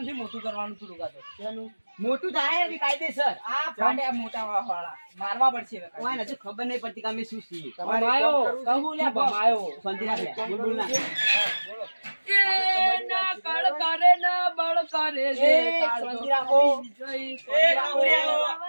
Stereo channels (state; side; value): inverted; both; correlation -1.00